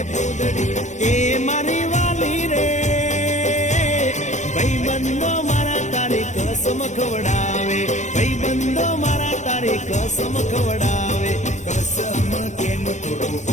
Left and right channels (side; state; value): right; late; 0.34 ms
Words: પૂદડી. એ મારી વાલી રે ભાઈબંધો મારા તારી કસમ ખવડાવે, ભાઈબંધો મારા તારી કસમ ખવડાવે. કસમ કેમ તોડું